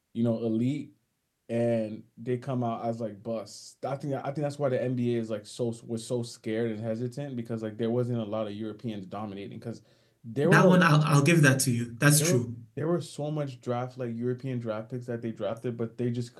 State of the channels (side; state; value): both; identical; correlation 1.00